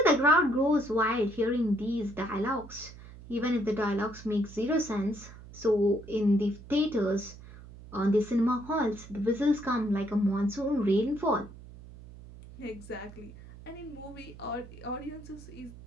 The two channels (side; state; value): right; noise; hum, 17 dB below the sound